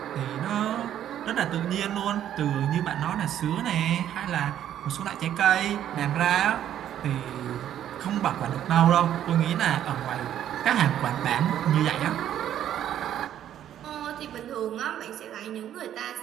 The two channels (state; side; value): quieter; left; 10.9 dB